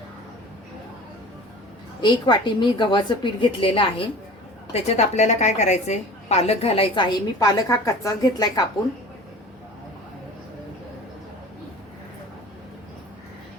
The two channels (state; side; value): normal; both; correlation 0.40